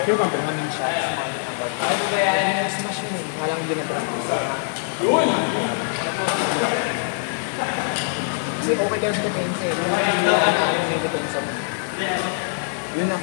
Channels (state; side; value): silent; right; 58 dB below the other